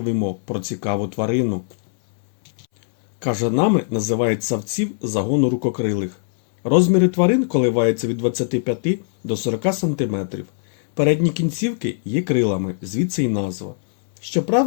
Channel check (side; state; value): right; silent; 65 dB below the other